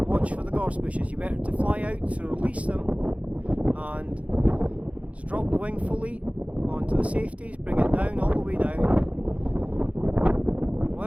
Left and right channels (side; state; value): left; late; 0.065 ms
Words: watch for the gorse bushes. You better to fly out, so release them. And just drop the wing fully onto the safeties, bring it down, all the way down.